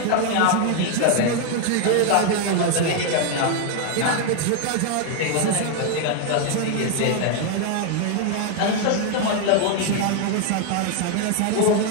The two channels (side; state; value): both; different; correlation 0.01